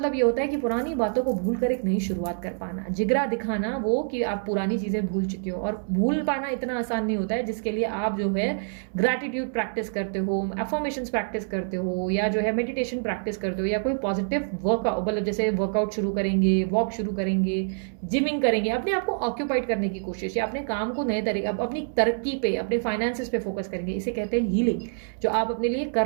ये होता है कि पुरानी बातों को भूल कर एक नई शुरुआत कर पाना, जिगरा दिखाना वो कि आप पुरानी चीजें भूल चुके हो। और भूल पाना इतना आसान नहीं होता है, जिसके लिए आप जो है ग्रैटिट्यूड प्रैक्टिस करते हो, अफर्मेशंस प्रैक्टिस करते हो, या जो है मेडिटेशन प्रैक्टिस करते हो, या कोई पॉजिटिव वर्कआउट, मतलब जैसे वर्कआउट शुरू करेंगे, वॉक शुरू करेंगे, जिमिंग करेंगे, अपने आप को ऑक्यूपाइड करने की कोशिश, या अपने काम को नए तरीके, अपनी तरक्की पे, अपने फाइनेंसेस पे फोकस करेंगे। इसे कहते हैं हीलिंग, जो आप अपने लिए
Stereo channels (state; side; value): silent; left; 61 dB below the other